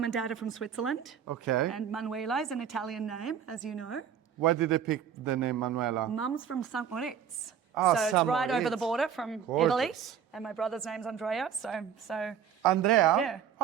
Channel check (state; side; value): quieter; left; 8.3 dB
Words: and dad are from Switzerland. Okay. And Manuela is an Italian name, as you know. Why did they pick the name Manuela? Mum's from St. Moritz. Oh, so it's right Moritz. over the border from Gorgeous. Italy. And my brother's name's Andrea, so Andrea? yeah.